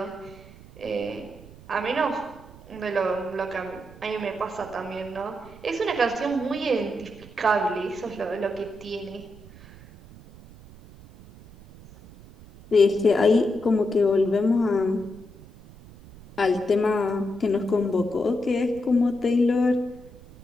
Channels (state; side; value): noise; right; rumble, 20 dB below the sound